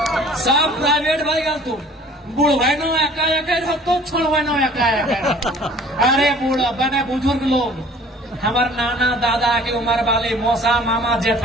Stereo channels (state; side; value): normal; both; correlation 0.50